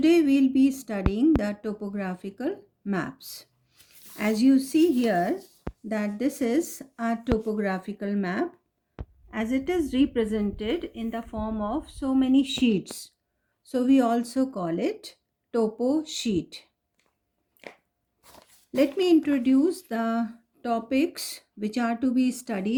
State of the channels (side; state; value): both; identical; correlation 1.00